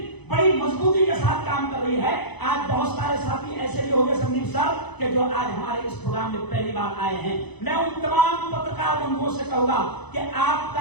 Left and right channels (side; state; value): right; late; 0.99 ms